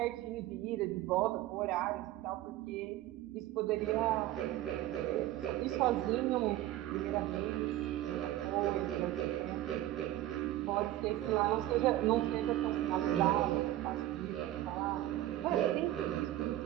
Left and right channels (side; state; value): left; quieter; 14.6 dB